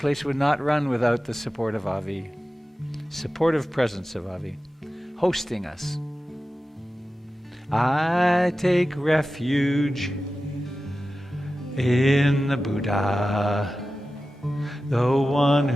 would not run without the support of Avi, supportive presence of Avi, hosting us. I take refuge in the Buddha, the one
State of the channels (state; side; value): normal; both; correlation 0.94